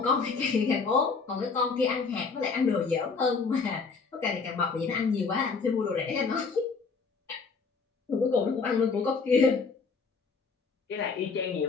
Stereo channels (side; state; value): right; quieter; 4.8 dB